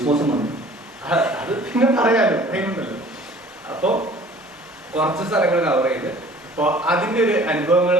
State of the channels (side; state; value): both; normal; correlation 0.49